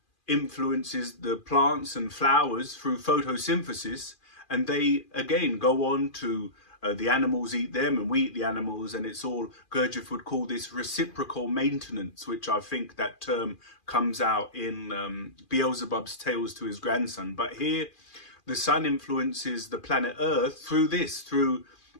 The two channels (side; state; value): right; late; 2.4 ms